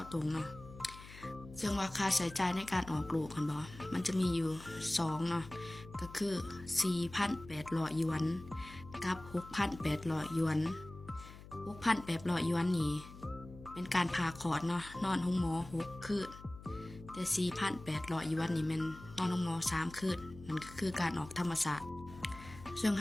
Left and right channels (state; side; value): noise; left; hum, 16 dB below the sound